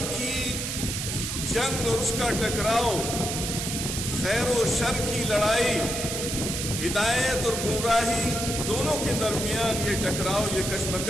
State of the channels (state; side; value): noise; right; hiss, 3 dB below the sound